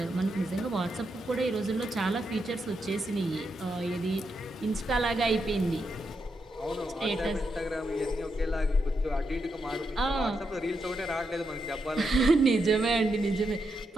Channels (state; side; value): normal; both; correlation 0.83